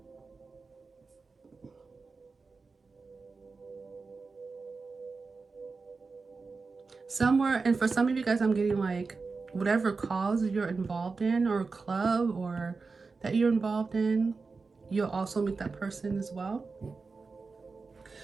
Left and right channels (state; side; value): quieter; left; 4.3 dB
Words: Somewhere, and for some of you guys, I'm getting like whatever cause you're involved in or club or that you're involved in, you'll also meet that person as well.